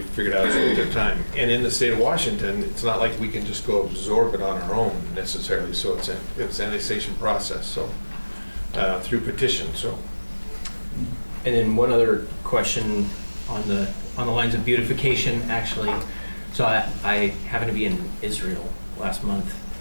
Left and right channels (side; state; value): both; inverted; correlation -1.00